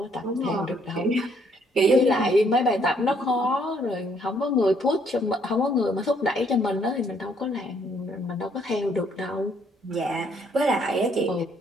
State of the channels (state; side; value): normal; both; correlation 0.67